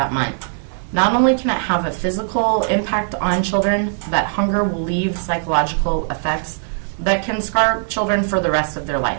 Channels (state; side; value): silent; left; 60 dB below the other